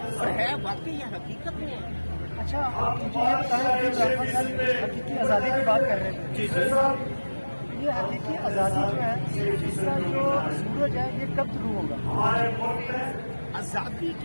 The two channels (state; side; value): inverted; both; correlation -1.00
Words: اور ہے واقعی یہ حقیقت میں ہے. اچھا آپ مجھے یہ بتائیں کہ حقیقی آزادی کی بات کر رہے تھے. جی یہ حقیقی آزادی جو ہے اس کا جو سورج ہے یہ کب شروع ہوگا؟ آزادی